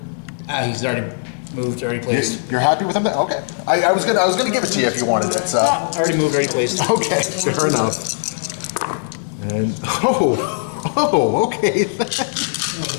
He's already moved, already placed. You're happy with him? Then? Okay. I was gonna give it to you if you wanted it. So. Already moved, already placed. Okay, fair enough. And okay.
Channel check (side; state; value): right; silent; digital silence